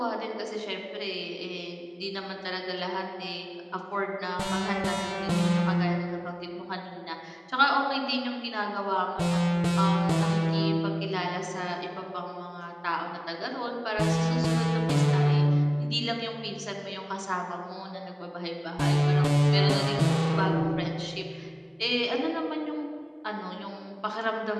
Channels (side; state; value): both; identical; correlation 1.00